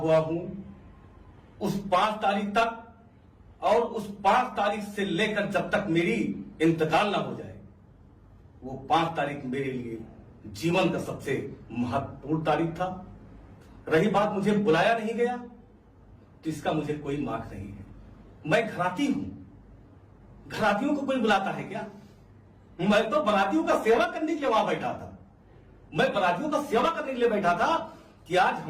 हूं उस 5 तारीख तक और उस 5 तारीख से लेकर जब तक मेरी इंतकाल ना हो जाए, वो 5 तारीख मेरे लिए जीवन का सबसे महत्वपूर्ण तारीख था। रही बात मुझे बुलाया नहीं गया, तो इसका मुझे कोई मार्क नहीं है। मैं घराती हूं, घरातियों को कोई बुलाता है क्या? मैं तो बरातियों का सेवा करने के लिए वहां बैठा था। मैं बरातियों का सेवा करने के लिए बैठा था कि आज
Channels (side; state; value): both; identical; correlation 1.00